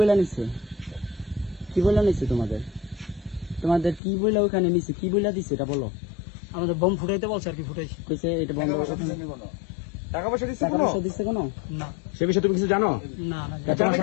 নিছে? কি বলে নিছে তোমাদের? তোমাদের কি বলে ওখানে নিছে? কি বলে দিছে এটা বলো। আমাদের বম ফুটাইতে বলছে আর কি, ফুটাইছি। কইছে এটা বন্ধ টাকা করতে। পয়সা দিছে কোনো? টাকা পয়সা দিচ্ছে টাকা কোনো? পয়সা দিছে কোনো? না সে বিষয়ে তুমি কিছু জানো? না না, তোমার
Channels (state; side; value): drops out; right; at 4.0 s